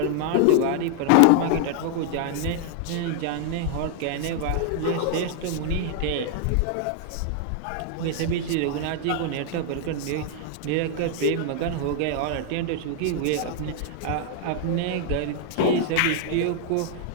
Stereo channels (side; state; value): both; different; correlation 0.00